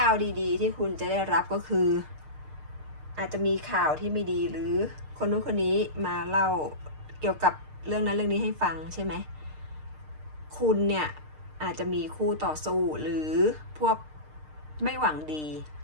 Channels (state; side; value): late; left; 6.6 ms